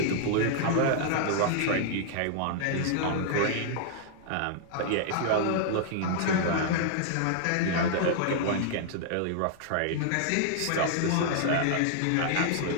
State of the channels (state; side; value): different; both; correlation -0.01